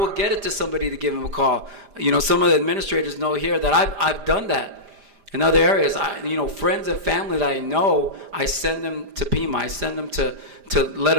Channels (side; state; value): left; late; 5.0 ms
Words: get it to somebody to give them a call. Some of the administrators know here that I've done that in other areas. Friends and family that I know, I send them to Pima. I send them to let